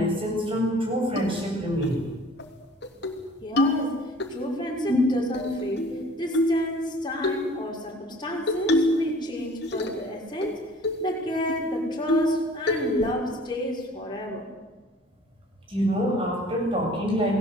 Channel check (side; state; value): both; normal; correlation 0.50